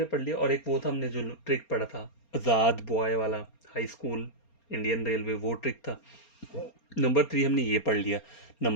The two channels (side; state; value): right; late; 4.3 ms